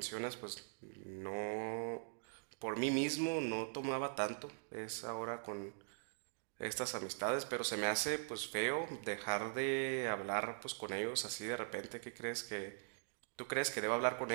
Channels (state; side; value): silent; left; digital silence